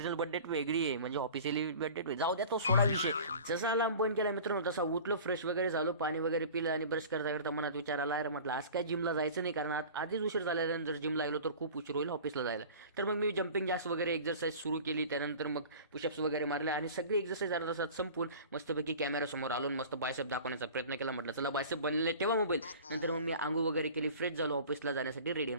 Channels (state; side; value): inverted; both; correlation -0.40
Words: बर्थडे वेगळी आहे, म्हणजे ऑफिशियली बर्थडे जाऊ द्या, तो सोडा विषय. जसा अलार्म बंद केला मित्रांनो, तसा उठलो, फ्रेश वगैरे झालो, पाणी वगैरे पिलं, आणि ब्रश करता करता मनात विचार आला, अरे म्हटलं आज काय जिमला जायचं नाही, कारण आधीच उशीर झाल्यानंतर जर जिमला गेलो तर खूप उशीर होईल ऑफिसला जायला. तर मग मी जम्पिंग जॅक्स वगैरे एक्झरसाईज सुरू केली, त्यानंतर मग पुशअप्स वगैरे मारले, आणि सगळी एक्झरसाईज अर्धा तासात संपून मस्तपैकी कॅमेरासमोर आलो, मस्त बायसेप दाखवण्याचा प्रयत्न केला. म्हटलं चला बायसेप बनलेले ठेवा मोबाईल. नंतर मग मी आंघोळ वगैरे केली, फ्रेश झालो, ऑफिसला जाण्यासाठी रेडी.